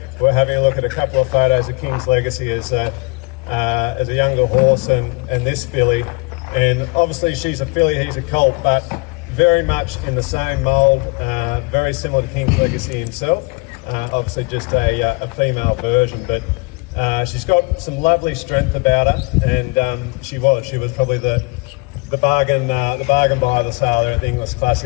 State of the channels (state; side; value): quieter; right; 28.0 dB